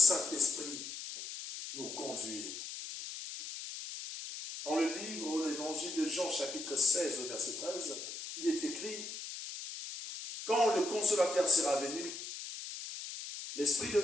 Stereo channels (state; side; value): noise; left; hiss, 9 dB below the sound